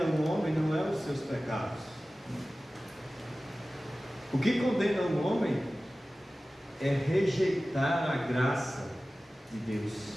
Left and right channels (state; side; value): normal; both; correlation 0.96